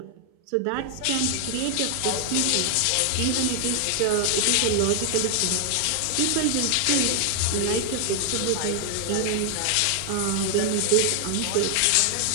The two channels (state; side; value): different; both; correlation 0.00